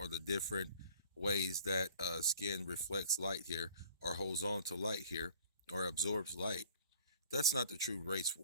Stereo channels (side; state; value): both; inverted; correlation -0.51